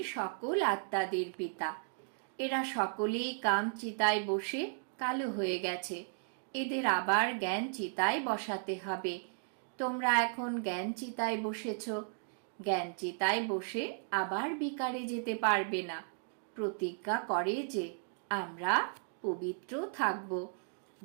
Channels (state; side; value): silent; left; digital silence